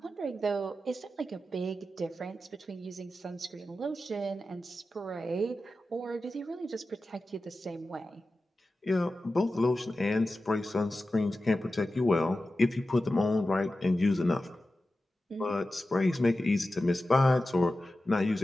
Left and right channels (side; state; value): both; normal; correlation 0.93